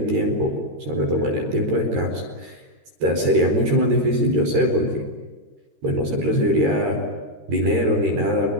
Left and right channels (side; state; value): left; late; 13 ms